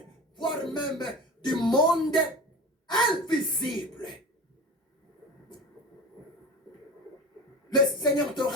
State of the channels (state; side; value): normal; both; correlation 0.32